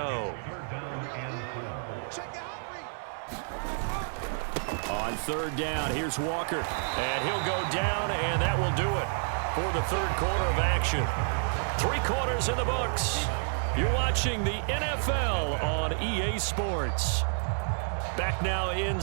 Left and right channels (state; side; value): silent; left; 58 dB below the other